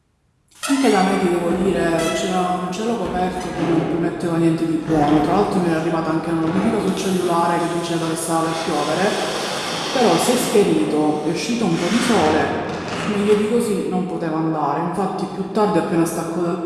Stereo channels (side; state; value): both; identical; correlation 1.00